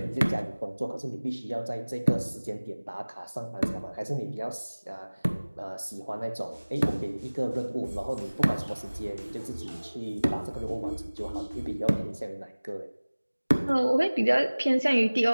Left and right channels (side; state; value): both; inverted; correlation -1.00